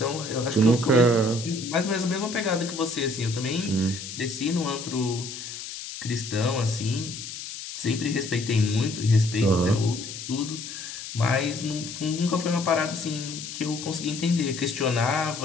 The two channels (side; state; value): left; noise; hiss, 9 dB below the sound